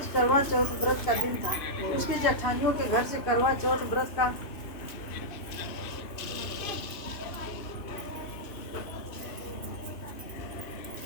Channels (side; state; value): right; late; 3.0 ms